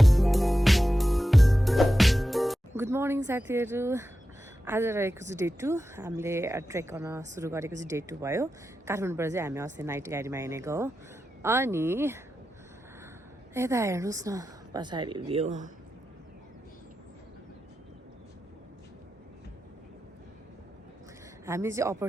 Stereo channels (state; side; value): normal; both; correlation 0.91